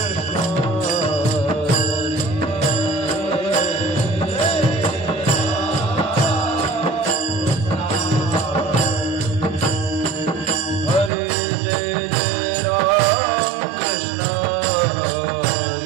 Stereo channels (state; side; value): drops out; left; at 11.1 s